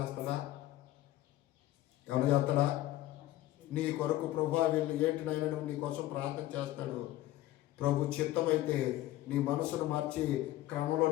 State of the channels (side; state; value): right; quieter; 15.3 dB